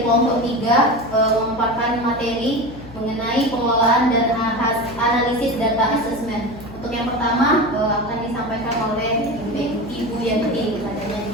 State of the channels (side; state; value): left; noise; hum, 17 dB below the sound